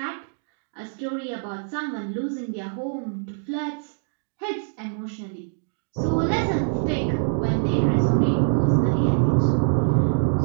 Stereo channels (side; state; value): left; silent; digital silence